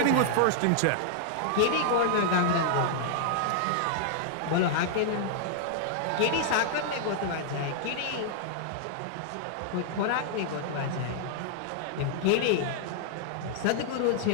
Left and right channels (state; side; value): different; both; correlation -0.01